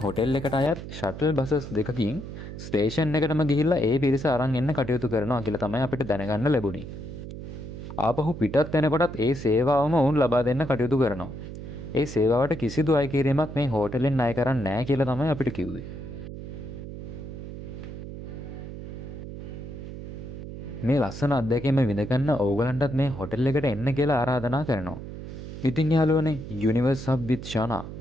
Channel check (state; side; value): noise; right; hum, 10 dB below the sound